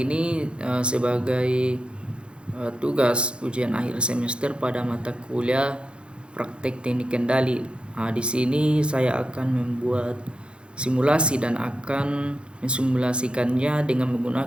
ini sebagai tugas ujian akhir semester pada mata kuliah praktek teknik kendali. Di sini saya akan membuat simulasi dan akan mensimulasikannya dengan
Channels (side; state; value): left; late; 0.056 ms